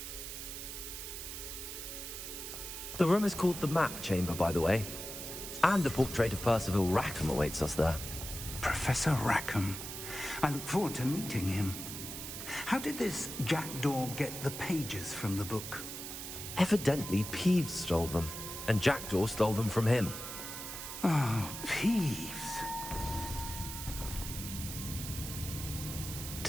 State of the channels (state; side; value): noise; right; hiss, 8 dB below the sound